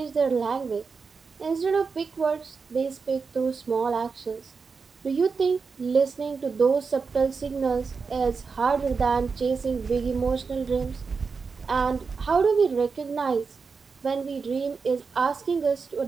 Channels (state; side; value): quieter; left; 5.0 dB